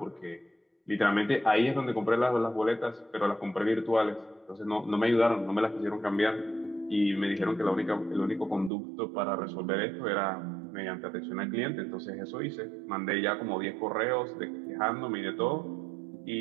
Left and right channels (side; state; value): left; drops out; at 8.7 s